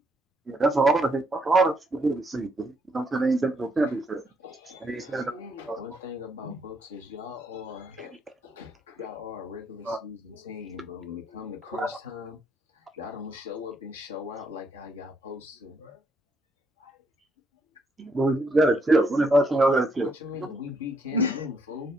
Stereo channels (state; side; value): normal; both; correlation 0.72